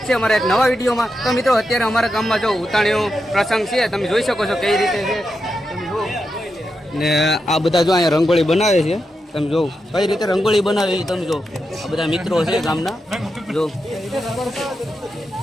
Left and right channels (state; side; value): normal; both; correlation 0.87